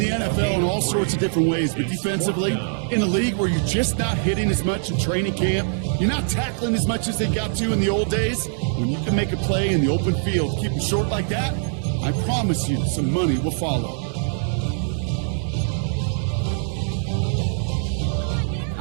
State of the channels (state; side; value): silent; left; digital silence